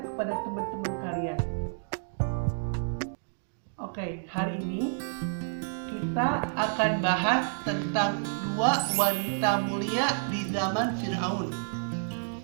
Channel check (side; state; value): left; silent; digital silence